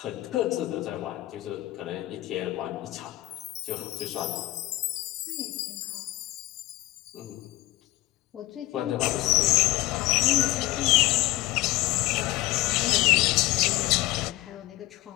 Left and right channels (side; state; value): right; quieter; 18.0 dB